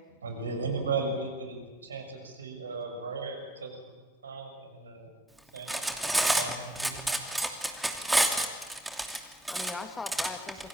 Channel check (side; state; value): both; normal; correlation 0.59